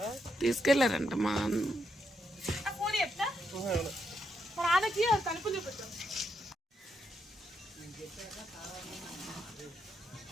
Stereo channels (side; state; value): both; normal; correlation 0.80